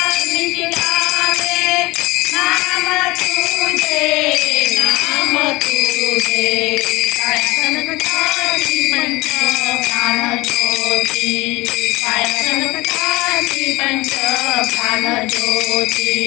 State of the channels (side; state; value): right; quieter; 21.6 dB